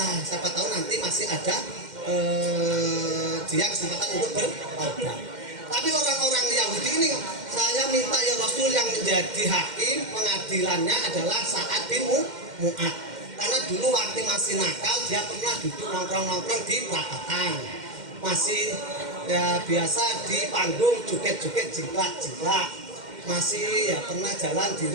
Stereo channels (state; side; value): late; left; 2.1 ms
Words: siapa tahu nanti masih ada dia kesempatan untuk bertaubat. Tapi orang-orang Yahudi ini, saya minta ya Rasul, yang menjadi hakim pengadilannya adalah Sa'ad bin Mu'adz. Karena dulu waktu masih nakal, dia pernah duduk nongkrong-nongkrong di perapatan. Masih ya biasa di panggung joget-joget jiplak-jiplak. Masih ya pernah jalan di